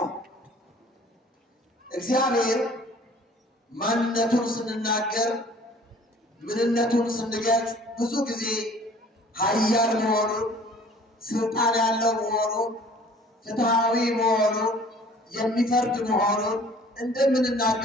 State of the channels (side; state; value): both; normal; correlation 0.52